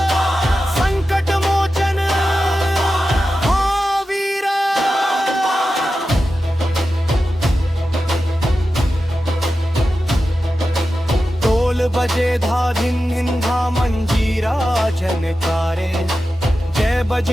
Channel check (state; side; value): normal; both; correlation 0.92